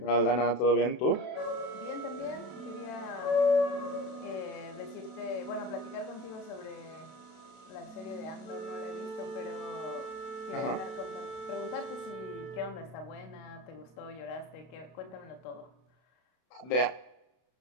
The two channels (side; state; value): right; late; 32 ms